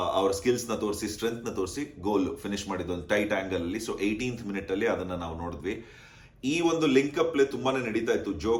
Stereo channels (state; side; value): identical; both; correlation 1.00